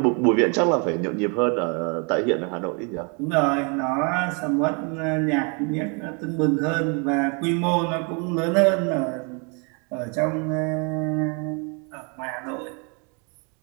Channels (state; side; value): quieter; left; 35.2 dB